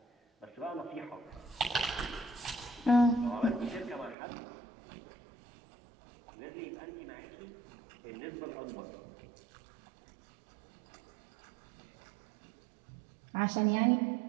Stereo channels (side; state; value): left; drops out; at 4.2 s